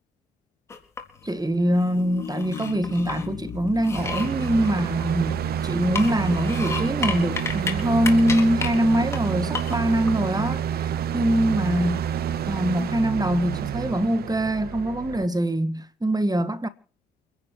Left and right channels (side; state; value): both; normal; correlation 0.80